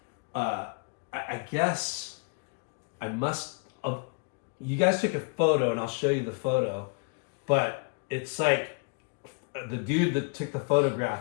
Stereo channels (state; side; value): quieter; right; 34.1 dB